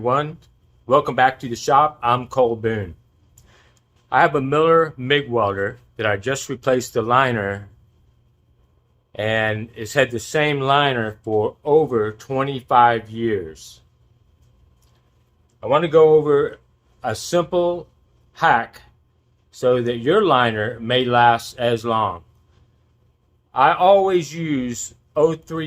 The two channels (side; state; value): both; identical; correlation 1.00